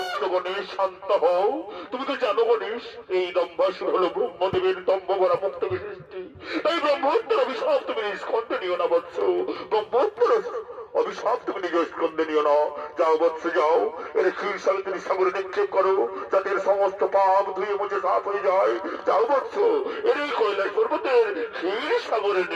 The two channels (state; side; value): identical; both; correlation 1.00